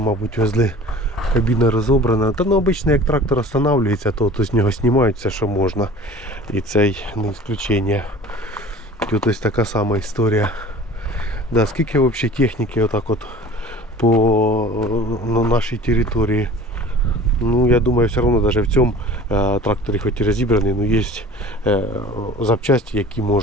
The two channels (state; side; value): normal; both; correlation 0.43